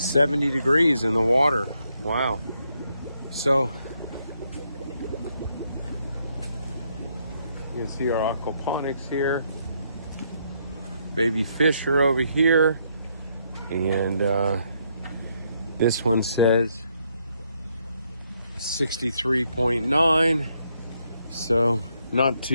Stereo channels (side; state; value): both; inverted; correlation -0.75